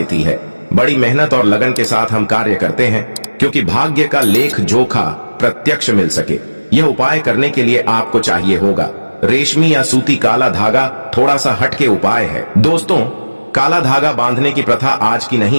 है। बड़ी मेहनत और लगन के साथ हम कार्य करते हैं क्योंकि भाग्य का लेख जोखा प्रत्यक्ष मिल सके। यह उपाय करने के लिए आपको चाहिए होगा रेशमी या सूती काला धागा। थोड़ा सा हटके उपाय है। दोस्तों, काला धागा बांधने की प्रथा आज की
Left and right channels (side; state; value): both; inverted; correlation -1.00